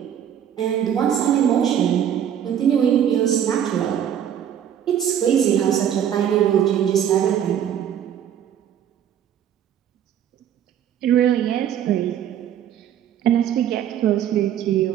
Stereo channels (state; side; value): quieter; left; 9.7 dB